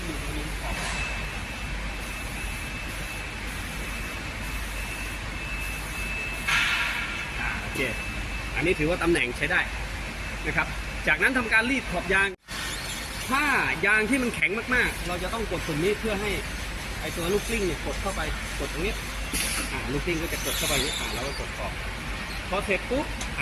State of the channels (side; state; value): both; identical; correlation 1.00